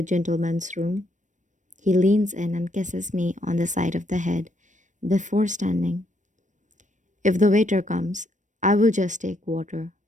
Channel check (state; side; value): late; left; 0.36 ms